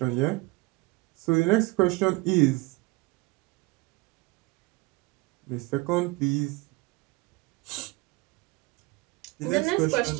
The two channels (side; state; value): left; quieter; 23.6 dB